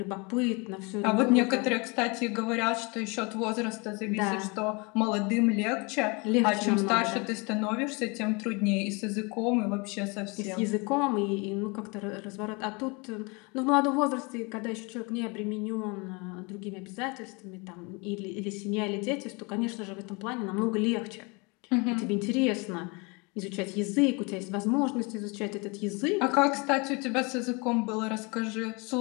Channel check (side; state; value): right; quieter; 29.1 dB